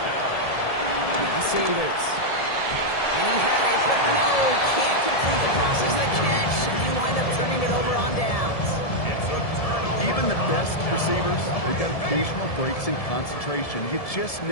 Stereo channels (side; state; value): right; late; 1.7 ms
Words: Now Sanders. And he had it, but no, can't complete the process of the catch. And you wind up turning it over on downs. Even the best receivers, they've got occasional breaks in concentration. You just